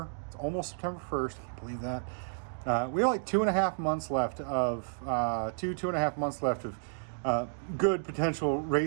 it's almost September 1st, I can't believe that. We have like 2.5 months left of 2.5 months left of good potential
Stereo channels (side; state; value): left; silent; digital silence